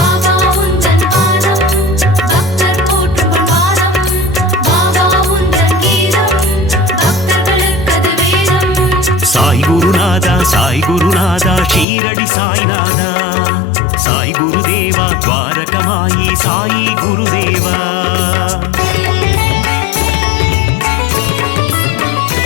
உந்தன் பாதம் பக்தர் போற்றும் பாதம். பாபா உந்தன் கீதம் பக்தர்களுக்கது வேதம். சாய் குருநாதா சாய் குருநாதா ஷீரடி சாய்நாதா. சாய் குருதேவா துவாரகமாயி சாயி குருதேவா.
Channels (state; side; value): drops out; right; at 11.9 s